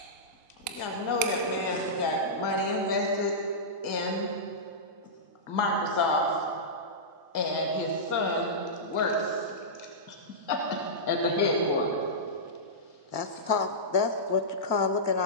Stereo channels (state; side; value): late; right; 1.8 ms